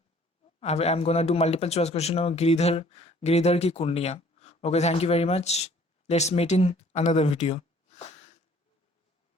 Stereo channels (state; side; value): normal; both; correlation 0.56